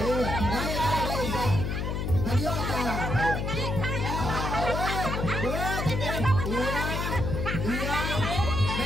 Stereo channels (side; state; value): left; noise; hum, 1 dB below the sound